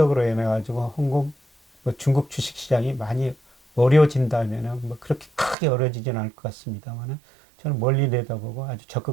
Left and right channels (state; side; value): drops out; left; at 5.6 s